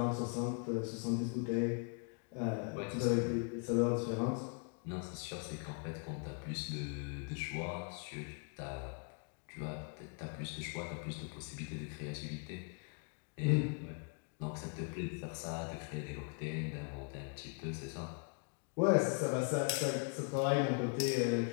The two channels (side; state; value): right; quieter; 37.2 dB